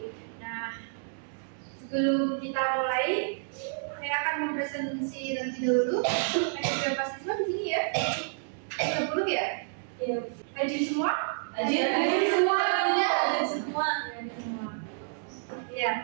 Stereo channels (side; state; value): left; silent; digital silence